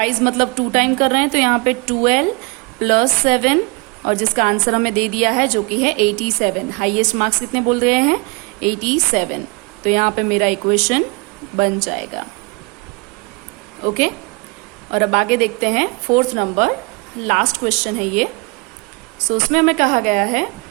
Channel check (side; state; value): left; quieter; 29.4 dB